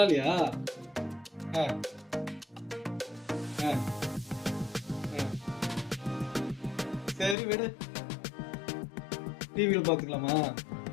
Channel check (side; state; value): right; drops out; at 7.4 s